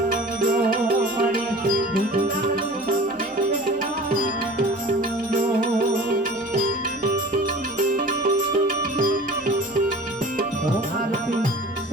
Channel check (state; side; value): normal; both; correlation 0.41